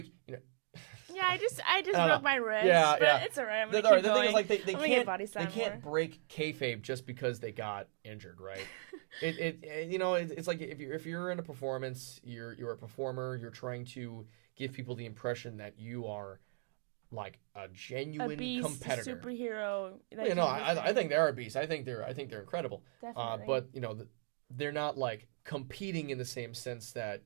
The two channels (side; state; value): left; silent; 53 dB below the other